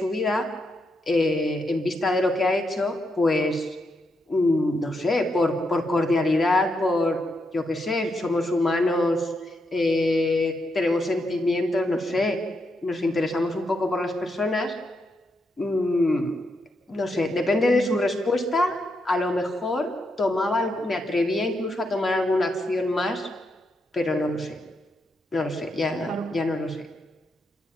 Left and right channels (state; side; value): normal; both; correlation 0.82